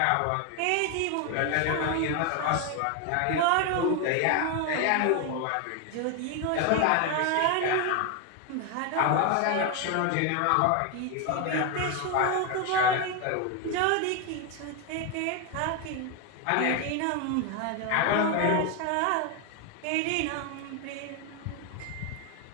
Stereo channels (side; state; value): both; different; correlation 0.01